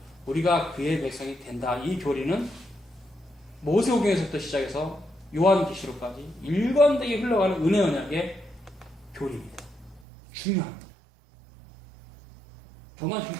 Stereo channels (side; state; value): left; drops out; at 10.1 s